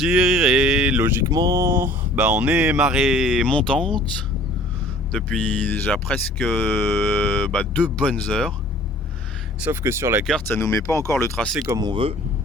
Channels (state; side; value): normal; both; correlation 0.50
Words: et logiquement, bah, on est marée montante depuis déjà presque 2 bonnes heures. Sauf que sur la carte, ça nous met pas encore le tracé comme on veut.